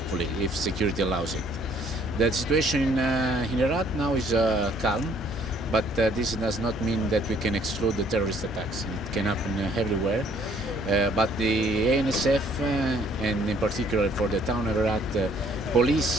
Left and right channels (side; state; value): both; normal; correlation 0.62